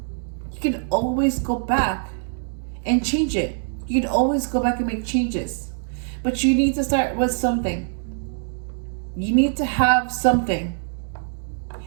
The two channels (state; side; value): silent; left; digital silence